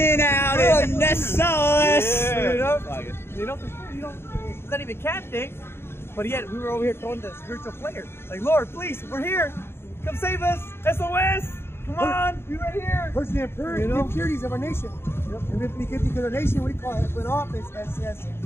out in the sauce. You know, it's not even camp day, but yet we were over here throwing the spiritual flare. Like, Lord, please, we're here. Come save us. SOS. Come on, be right here. First the impurities of our nation. And because our nation, we call it, went off as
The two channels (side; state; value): right; late; 0.12 ms